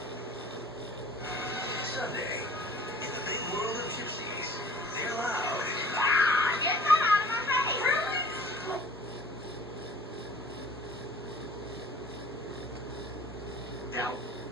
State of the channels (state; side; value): normal; both; correlation 0.49